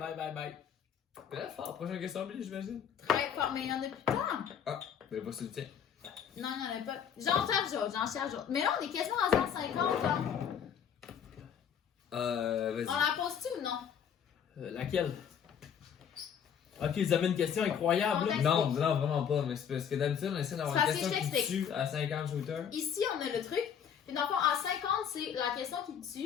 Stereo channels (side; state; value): right; quieter; 8.1 dB